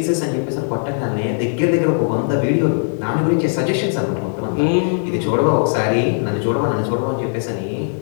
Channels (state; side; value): silent; right; digital silence